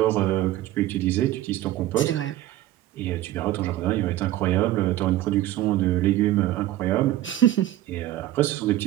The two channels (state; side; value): quieter; left; 14.3 dB